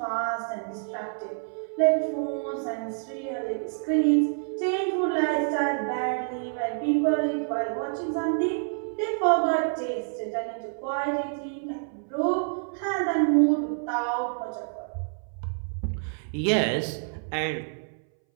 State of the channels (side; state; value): left; silent; 60 dB below the other